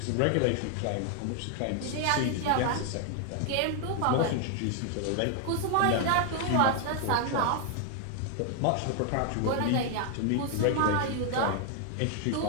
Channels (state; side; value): different; both; correlation 0.00